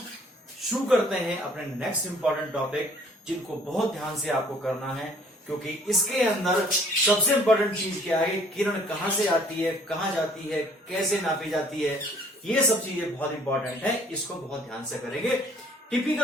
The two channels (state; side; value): normal; both; correlation 0.57